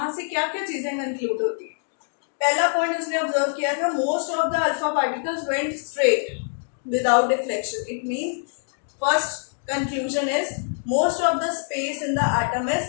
से क्या क्या चीजें कंक्लूड होती है। पहला पॉइंट उसने ऑब्जर्व किया था, most of the alpha particles went straight without deflection. It means first conclusion is most of the space in the atom is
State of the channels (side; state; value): right; silent; digital silence